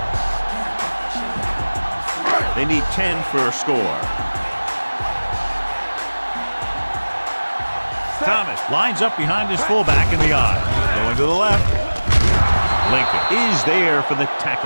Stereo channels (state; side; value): inverted; both; correlation -1.00